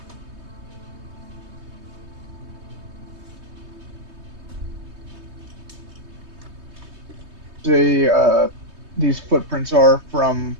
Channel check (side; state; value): left; late; 3.2 ms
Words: These footprints are from